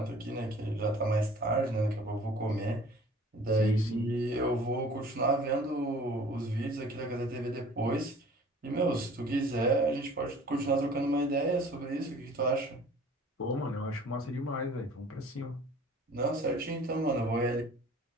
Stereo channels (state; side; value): normal; both; correlation 0.49